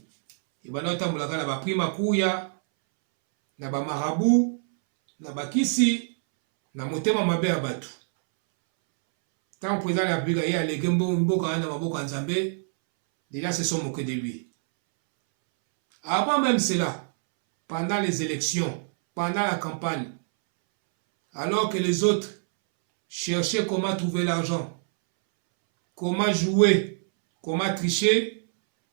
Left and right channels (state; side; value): silent; left; 61 dB below the other